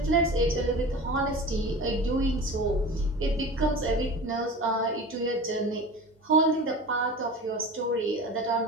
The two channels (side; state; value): both; normal; correlation 0.34